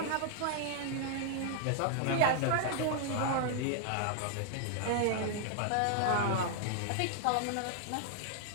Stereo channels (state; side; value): different; both; correlation -0.01